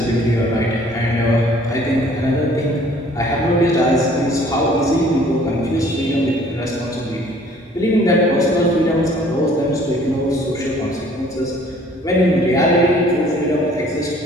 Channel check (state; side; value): normal; both; correlation 0.56